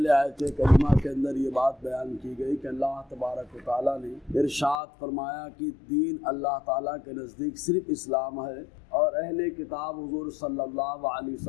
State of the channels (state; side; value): drops out; right; at 4.8 s